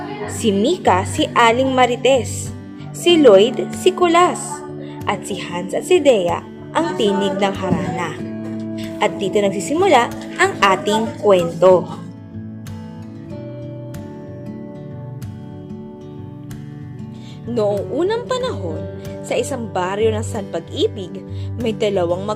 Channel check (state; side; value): identical; both; correlation 1.00